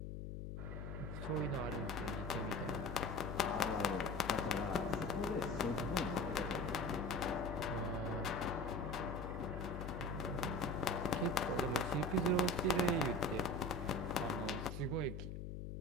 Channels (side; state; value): left; noise; hum, 6 dB below the sound